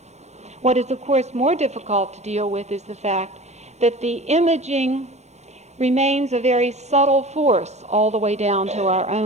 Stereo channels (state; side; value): late; left; 0.32 ms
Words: What is, of course, more difficult to deal with is the fact that the imaging remains a very subtle force all the way down to our